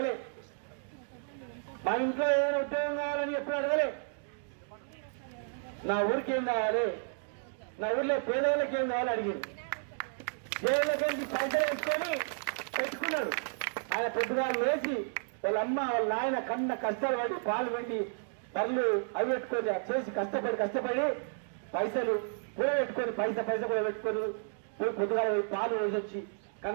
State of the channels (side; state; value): left; silent; digital silence